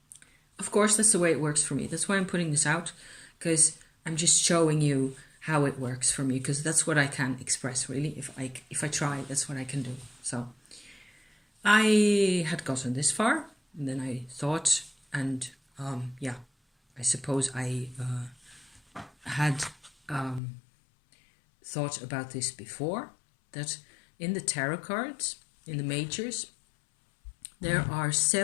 Of course, that's the way it works for me. That's why I'm putting this out, because I'm just showing you how it works for me, because that's what I can express, really. If I try, that's what I can do. So I had gotten this far, and then I thought, and I suppose I had thought about this before, that in the tarot cards, in the majors, there are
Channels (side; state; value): right; drops out; at 20.4 s